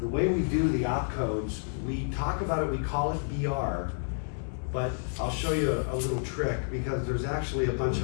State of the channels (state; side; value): silent; right; digital silence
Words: way we do the opcodes, we talk about it, we call it BR, but I'll show you a little trick because there's actually a bunch